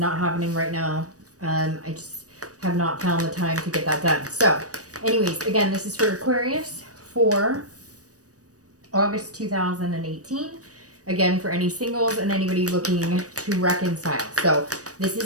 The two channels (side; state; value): left; late; 0.66 ms